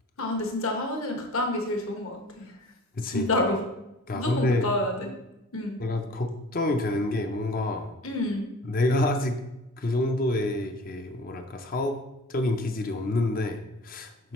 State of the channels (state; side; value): normal; both; correlation 0.43